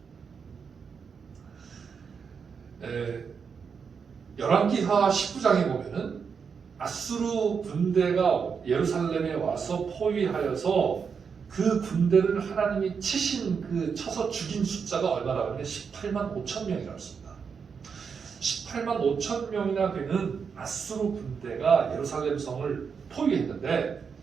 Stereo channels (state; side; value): quieter; left; 6.1 dB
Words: 열왕기하 19장에 보면은 아수르 군대가 예루살렘에 와서 포위하여서 그 군대를 하나님이 쳐서 죽인 숫자가 얼마나 하면 18만 5천 명이라고 했습니다. 18만 5천 명이나 되는 아수르 군대가 예루살렘 성을 포위했는데